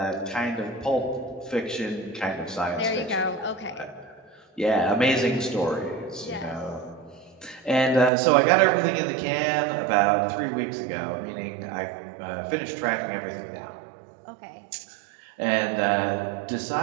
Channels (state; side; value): drops out; left; at 8.1 s